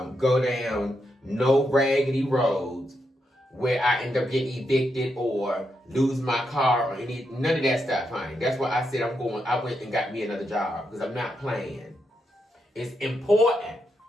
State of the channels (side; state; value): both; normal; correlation 0.83